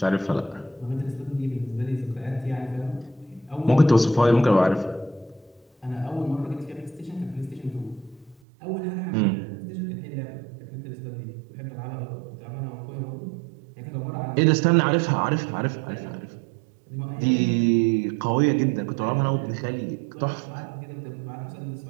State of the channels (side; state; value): left; drops out; at 8.3 s